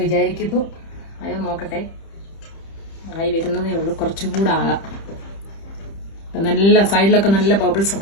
വിചാരിക്കുന്നു. അയോ നോക്കട്ടെ, ആയി വരുന്നതേ ഉള്ളൂ. കുറച്ചും കൂടെ ആകാം. നല്ല സൈഡിലൊക്കെ നല്ല ബബിൾസ്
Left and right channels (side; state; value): right; late; 30 ms